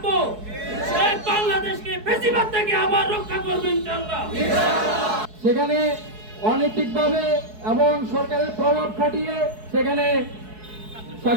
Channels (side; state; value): left; late; 4.7 ms